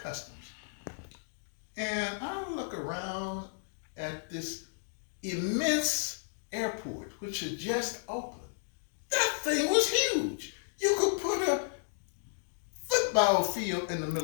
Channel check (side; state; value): right; silent; digital silence